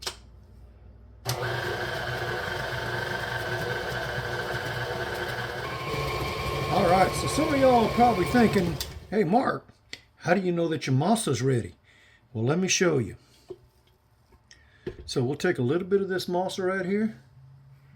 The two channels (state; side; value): identical; both; correlation 1.00